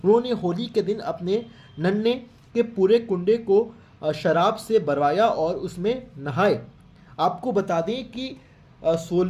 होली के दिन अपने नन्हे के पूरे कुंडे को शराब से भरवाया और उसमें नहाए। आपको बता दें कि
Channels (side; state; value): both; identical; correlation 1.00